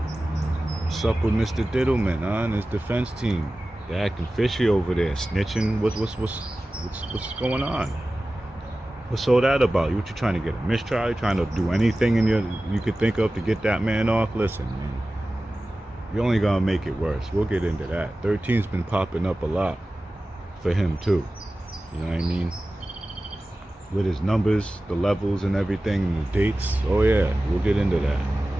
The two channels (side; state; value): both; normal; correlation 0.96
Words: What's up with Mr. Diddleman, huh? And his defense team? They're acting fishy over there, snitching. What's going on? What's all that about? What you trying to get a mistrial? You trying to do anything you could think of to get that man off? Listen, man, you're only gonna make it worse. We'll get into that. 13's been popping up a lot for him too. You know what I mean? With his numbers, the levels and everything, and the dates. Oh yeah, we'll get into that.